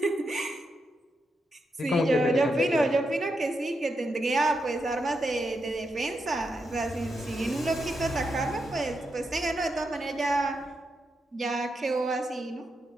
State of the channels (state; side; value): normal; both; correlation 0.84